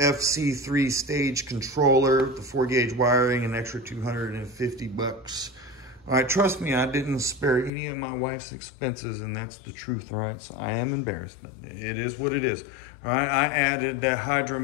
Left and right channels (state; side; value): drops out; right; at 7.7 s